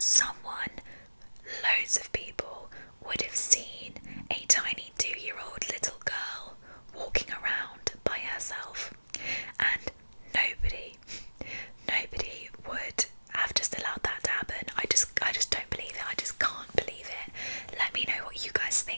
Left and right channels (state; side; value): inverted; both; correlation -1.00